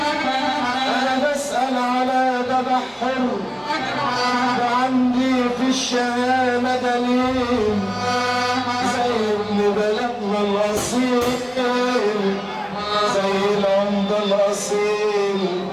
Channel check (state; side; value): identical; both; correlation 1.00